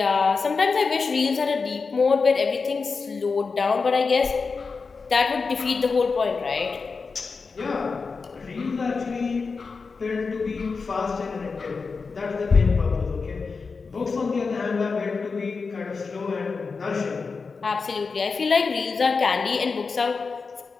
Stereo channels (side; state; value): right; quieter; 4.7 dB